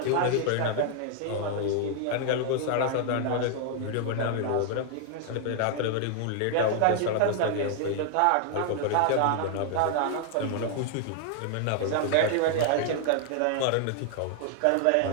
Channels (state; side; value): different; both; correlation 0.00